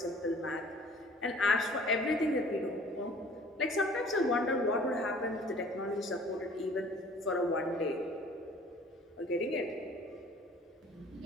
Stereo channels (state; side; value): normal; both; correlation 0.51